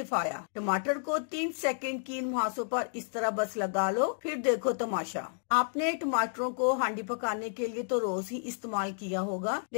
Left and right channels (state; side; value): silent; right; digital silence